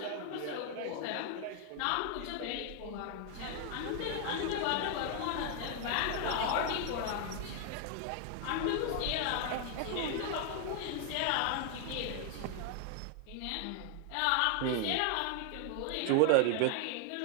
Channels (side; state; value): both; different; correlation 0.00